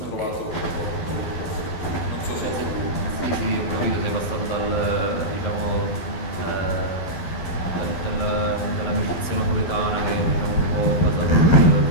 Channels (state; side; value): late; right; 12 ms